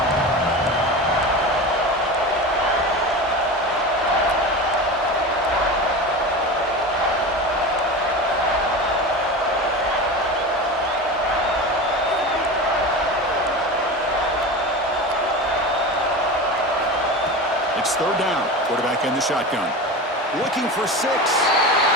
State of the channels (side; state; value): both; normal; correlation 0.28